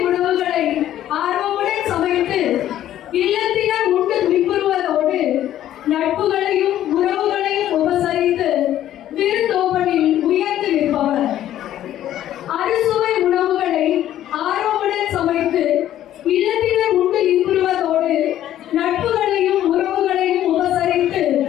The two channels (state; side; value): quieter; right; 12.2 dB